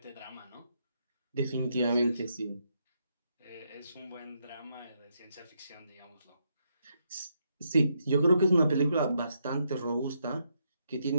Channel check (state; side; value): inverted; both; correlation -0.78